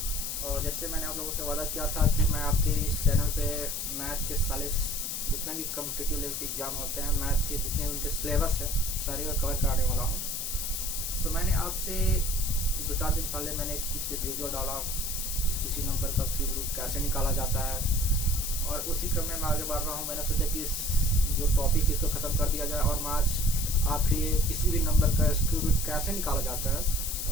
और जैसे मैंने आप लोगों से वादा किया था कि मैं आपके इस चैनल पे मैथ के सारे जितने भी कॉम्पिटिटिव लेवल के एग्जाम होते हैं, मैथ के जितने उनके सिलेबस है सारे को कवर कराने वाला हूँ। तो मैंने आज से 2-4 दिन पहले मैंने इसके वीडियो डाला किसी नंबर का क्यूब रूट कैसे निकाला जाता है, और उसी क्रम में मैं आगे बढ़ रहा हूँ। मैंने सोचा कि इस जो टॉपिक इसको ख़त्म कर दिया जाए और मैं आज आपके लिए किसी भी नंबर का क्यूब रूट कैसे निकाला जाता है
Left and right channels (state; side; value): noise; left; hiss, 3 dB below the sound